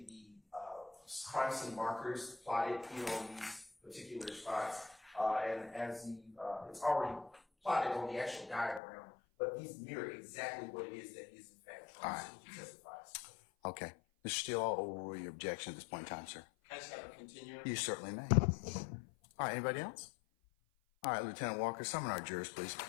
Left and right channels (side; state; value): right; drops out; at 8.8 s